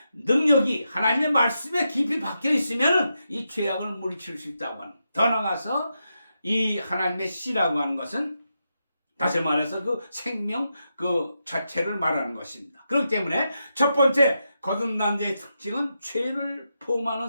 능력이 하나님의 말씀에 깊이 박혀 있으면 이 죄악을 물리칠 수 있다고 하는. 더 나아가서 이 하나님의 씨라고 하는 것은 다시 말해서 그 생명 그 자체를 말하는 것입니다. 그렇기 때문에 첫 번째 거듭난 자의 특징은 죄를 포함하는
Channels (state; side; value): inverted; both; correlation -0.86